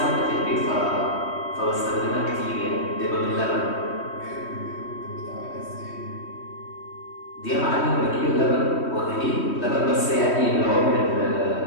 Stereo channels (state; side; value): late; right; 3.1 ms